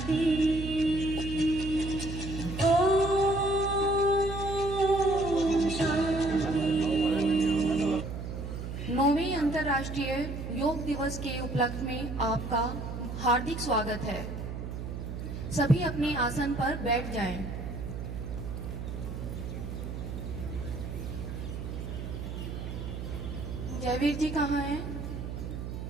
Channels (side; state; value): right; noise; hum, 6 dB below the sound